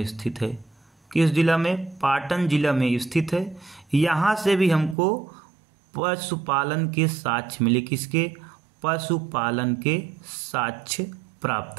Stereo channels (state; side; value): drops out; left; at 5.0 s